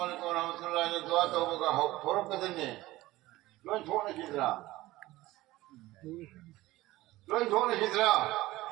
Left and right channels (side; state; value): left; quieter; 17.9 dB